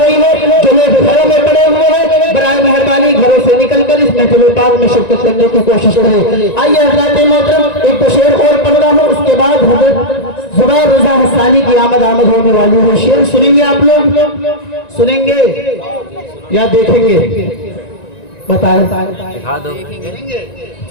है, जो लोग घरों में पड़े हुए हैं, बराए मेहरबानी घरों से निकलकर इस महफिल पाक में शिरकत करने की कोशिश करें। आइए हजरात मोहतरम, एक तो शेर और पढ़ रहा हूँ, उसके बाद हजरत जुबैर रजा हस्सानी की आमद होने वाली है। शेर सुनेंगे आप लोग? सुनेंगे या देखेंगे? बताएं। दिखा दो।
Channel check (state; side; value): late; right; 1.9 ms